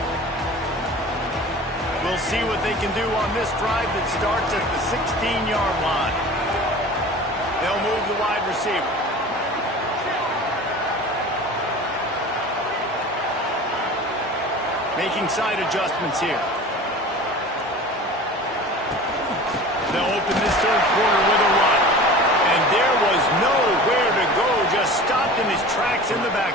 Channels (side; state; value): both; normal; correlation 0.39